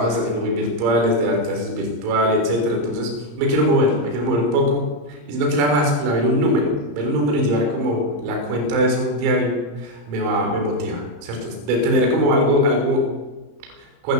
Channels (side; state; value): left; late; 34 ms